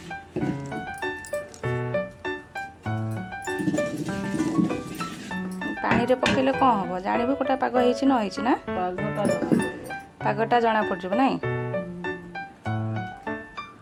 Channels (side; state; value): both; identical; correlation 1.00